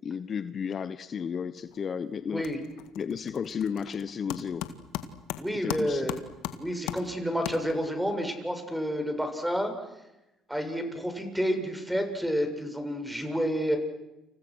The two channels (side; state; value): both; normal; correlation 0.82